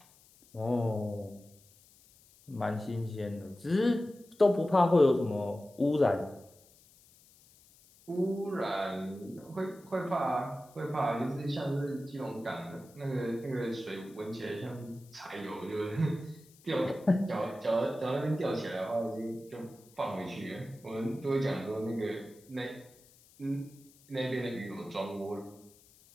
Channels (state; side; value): noise; left; hiss, 27 dB below the sound